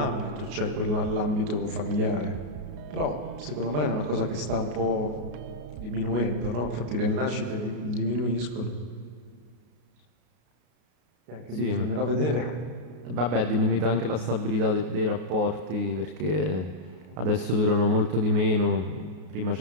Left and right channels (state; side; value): late; left; 33 ms